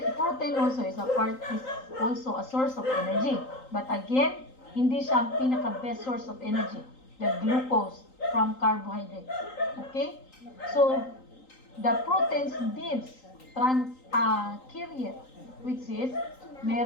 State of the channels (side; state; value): right; late; 3.9 ms